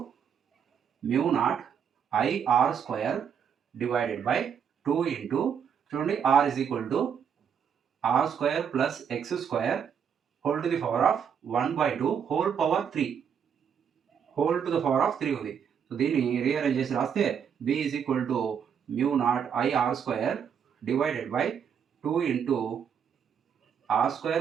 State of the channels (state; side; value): quieter; left; 7.6 dB